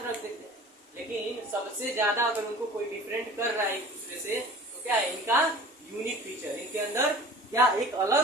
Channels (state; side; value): normal; both; correlation 0.43